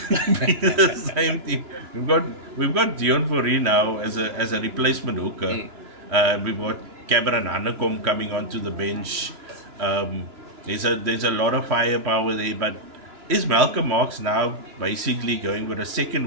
team. We've got Dion Fourie now as a replacement hooker. We've got Cameron Hanekom coming onto the bench. There's a lot of firepower there, but is Malcolm Marx now basically going with a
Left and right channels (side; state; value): left; late; 3.1 ms